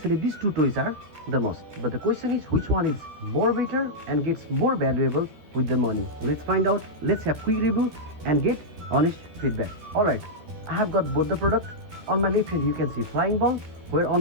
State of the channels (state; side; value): late; left; 13 ms